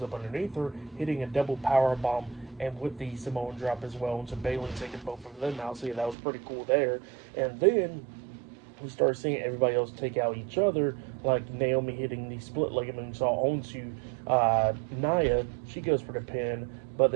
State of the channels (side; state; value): left; drops out; at 6.2 s